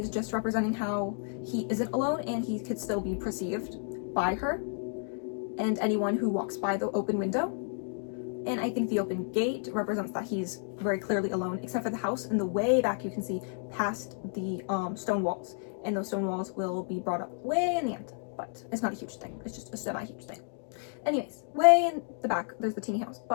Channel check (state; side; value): silent; right; 56 dB below the other